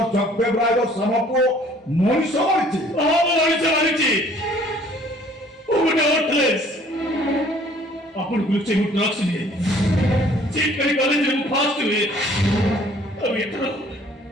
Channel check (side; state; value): both; normal; correlation 0.56